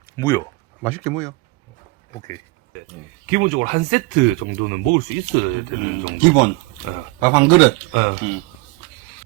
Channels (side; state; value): left; quieter; 24.0 dB